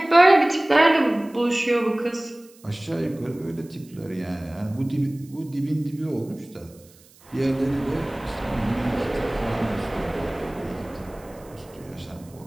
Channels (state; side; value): noise; right; hiss, 27 dB below the sound